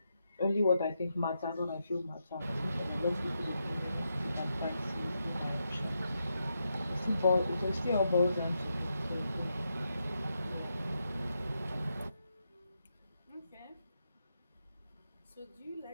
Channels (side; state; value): both; inverted; correlation -0.84